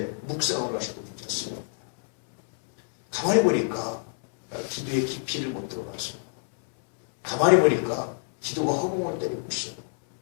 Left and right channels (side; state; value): right; silent; 61 dB below the other